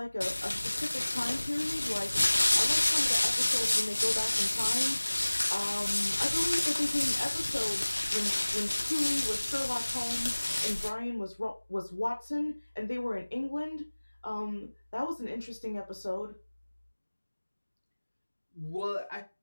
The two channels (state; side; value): inverted; both; correlation -1.00